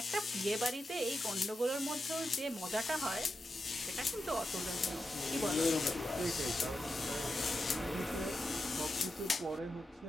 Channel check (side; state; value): both; normal; correlation 0.88